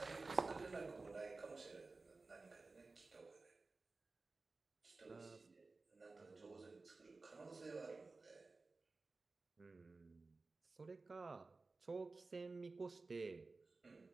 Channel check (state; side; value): quieter; left; 3.7 dB